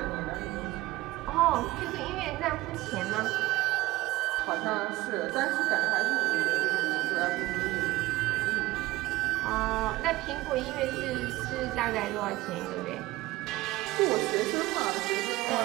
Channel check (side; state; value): left; quieter; 18.4 dB